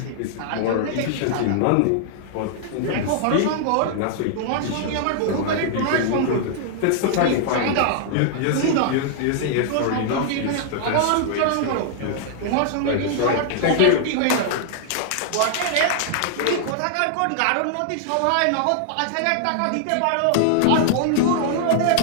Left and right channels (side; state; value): both; different; correlation -0.01